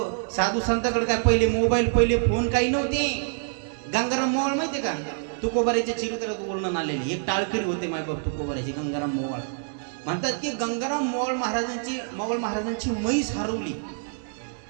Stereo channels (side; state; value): left; silent; 61 dB below the other